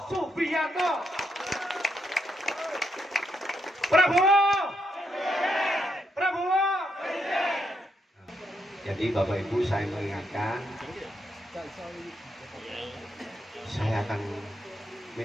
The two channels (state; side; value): normal; both; correlation 0.79